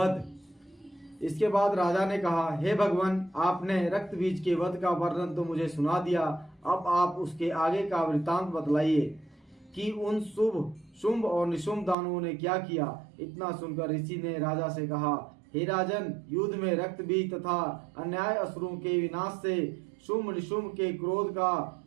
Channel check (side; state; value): left; drops out; at 12.0 s